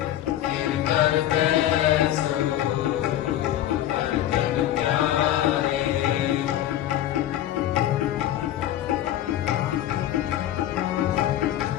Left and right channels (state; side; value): quieter; right; 12.6 dB